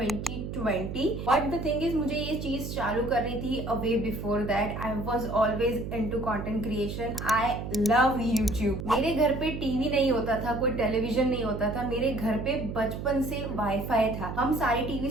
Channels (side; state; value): right; noise; hum, 6 dB below the sound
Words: But the thing is, मुझे ये चीज चालू करनी थी a way before that. I was always into content creation. I love YouTube. मेरे घर पे टीवी नहीं होता था, कोई टेलीविजन नहीं होता था. मेरे घर पे बचपन से वाईफाई था. हम सारी टीवी